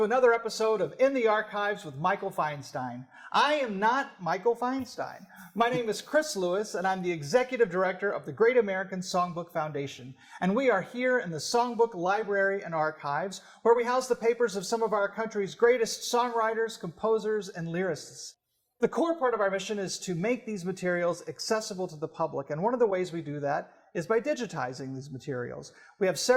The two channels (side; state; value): both; identical; correlation 1.00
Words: another episode of In the Archives with Michael Feinstein. I am not Michael Feinstein. My name is Chris Lewis, and I'm the Executive Director of the Great American Songbook Foundation. And we are here in the Songbook Library and Archives, where we house the papers of some of our country's greatest songwriters, composers, and lyricists. The core part of our mission is to make these materials accessible to the public, and one of the ways we do that is by digitizing these materials. We have